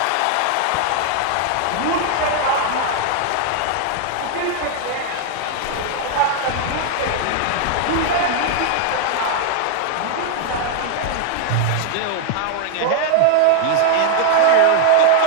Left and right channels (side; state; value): both; different; correlation 0.00